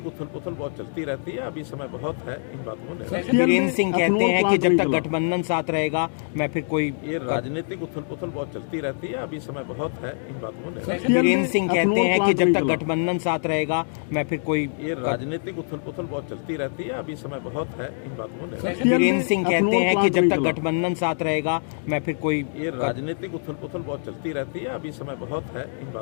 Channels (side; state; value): right; silent; digital silence